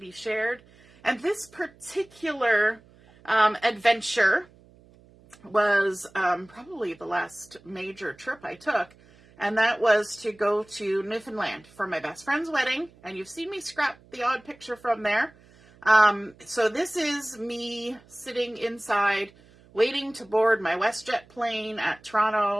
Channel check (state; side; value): noise; right; hum, 27 dB below the sound